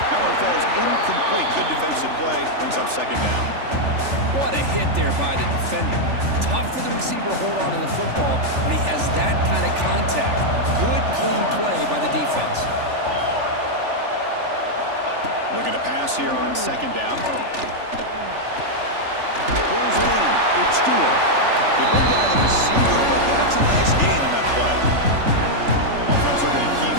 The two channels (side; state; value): left; late; 3.4 ms